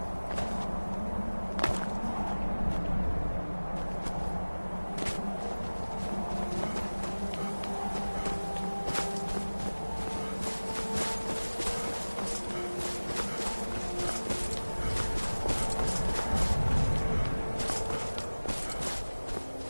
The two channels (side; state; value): both; inverted; correlation -1.00